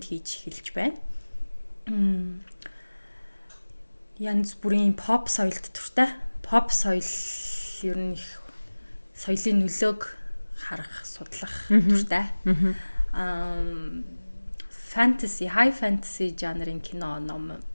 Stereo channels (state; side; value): inverted; both; correlation -1.00